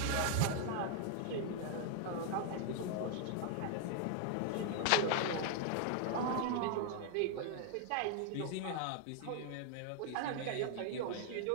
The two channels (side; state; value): both; different; correlation 0.00